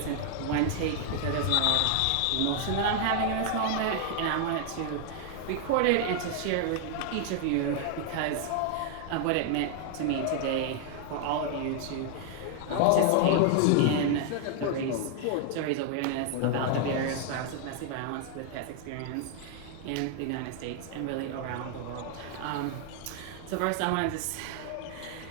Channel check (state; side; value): different; both; correlation 0.00